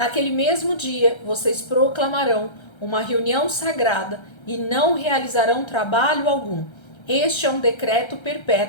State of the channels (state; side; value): late; right; 1.3 ms